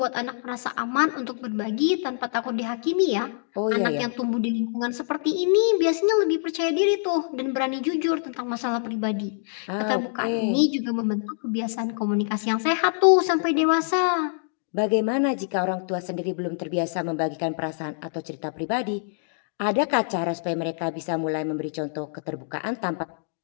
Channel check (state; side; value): silent; right; digital silence